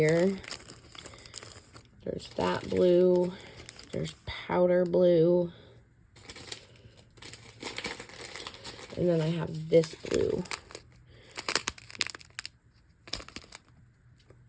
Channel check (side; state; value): both; identical; correlation 1.00